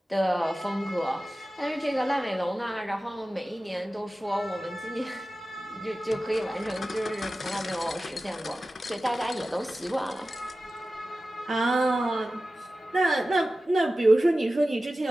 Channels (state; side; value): normal; both; correlation 0.95